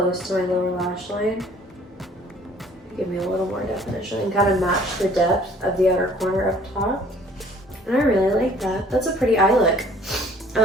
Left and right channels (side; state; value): both; normal; correlation 0.55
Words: to my lower lash line. Give me a little more definition and kind of match the depth of the outer corner up top. And I really like that. That's a pretty eye look.